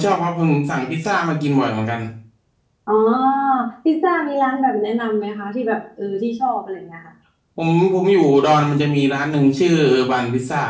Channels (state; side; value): identical; both; correlation 1.00